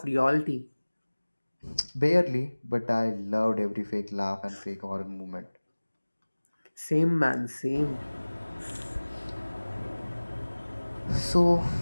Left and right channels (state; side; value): inverted; both; correlation -1.00